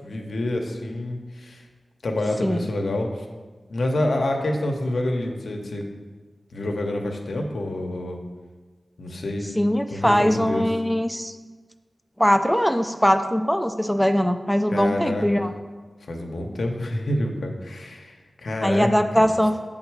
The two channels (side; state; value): both; normal; correlation 0.97